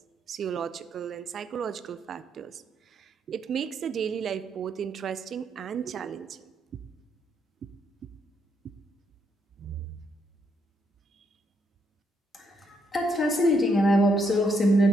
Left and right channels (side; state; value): both; normal; correlation 0.75